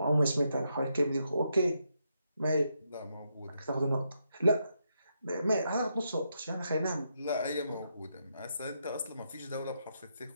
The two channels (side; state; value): both; inverted; correlation -0.81